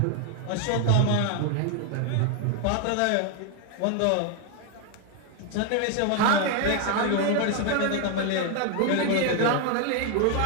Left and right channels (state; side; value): different; both; correlation 0.01